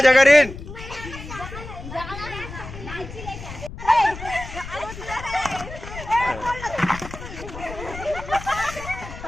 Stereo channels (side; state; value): left; noise; rumble, 12 dB below the sound